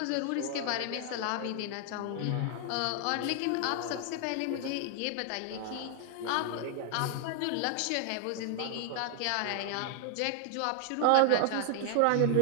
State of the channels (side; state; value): both; different; correlation 0.00